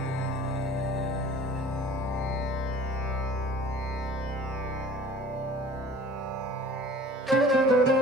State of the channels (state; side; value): normal; both; correlation 0.46